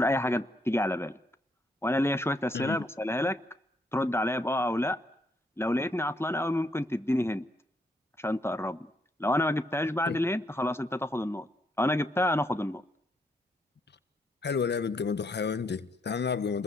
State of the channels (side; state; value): both; normal; correlation 0.74